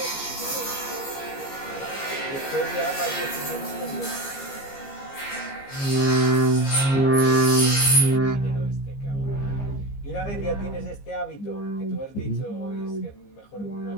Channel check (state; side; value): late; right; 15 ms